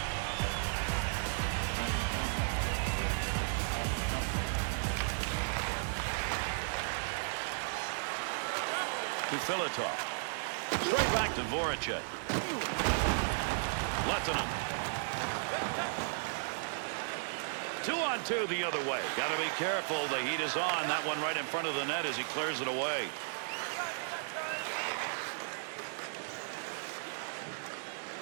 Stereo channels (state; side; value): silent; left; digital silence